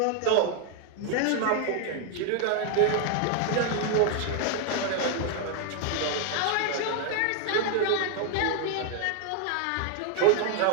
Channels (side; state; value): both; different; correlation 0.00